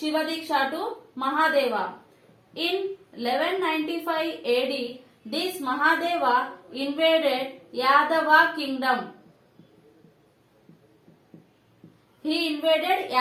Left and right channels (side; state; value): both; identical; correlation 1.00